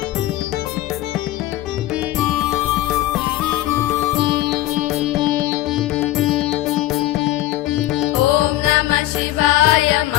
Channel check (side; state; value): right; quieter; 15.4 dB